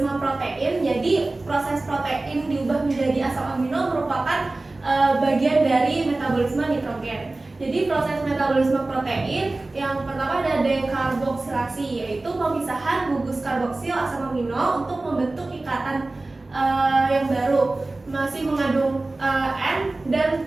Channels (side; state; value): left; quieter; 3.1 dB